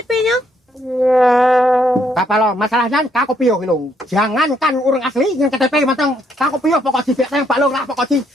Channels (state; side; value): normal; both; correlation 0.72